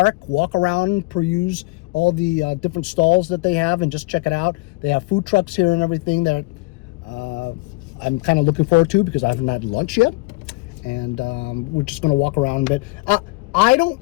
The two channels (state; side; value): quieter; right; 24.7 dB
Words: walk around, peruse all the different stalls that they have and just check it out. They have food trucks here and everything that I'm kind of looking forward to because I haven't had lunch yet. And we're just going to walk around a bit. I don't